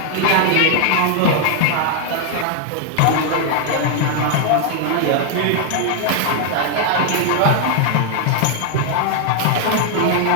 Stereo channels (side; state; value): both; different; correlation 0.00